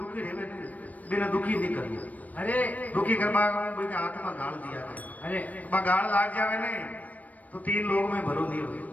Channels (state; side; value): late; right; 0.074 ms